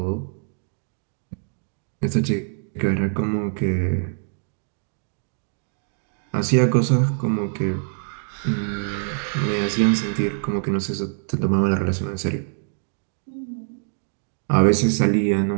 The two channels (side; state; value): left; silent; digital silence